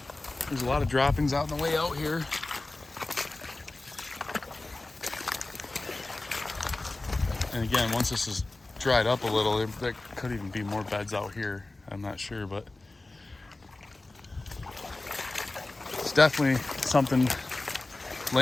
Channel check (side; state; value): right; quieter; 3.0 dB